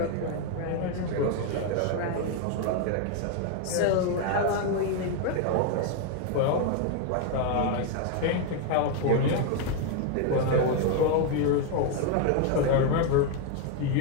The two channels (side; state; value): both; different; correlation 0.01